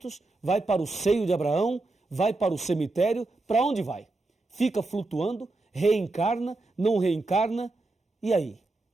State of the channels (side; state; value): left; quieter; 3.1 dB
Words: Vai para o seio de Abraão? Vai para o cemitério? Para onde vai? Fica flutuando? Reencarna? Não reencarna? E aí?